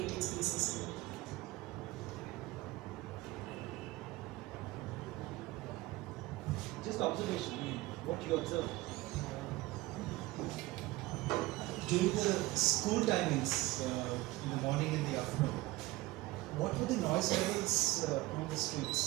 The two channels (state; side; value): quieter; left; 19.3 dB